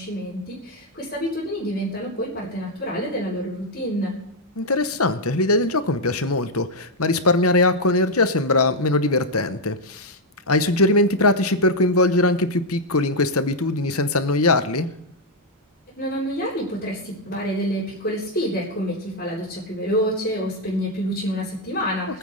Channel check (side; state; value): both; normal; correlation 0.00